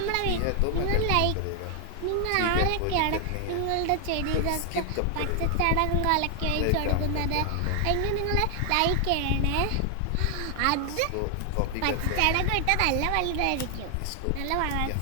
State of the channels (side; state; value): both; different; correlation 0.00